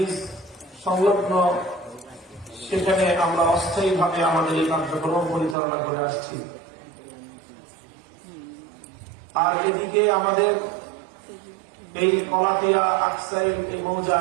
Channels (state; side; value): drops out; left; at 5.6 s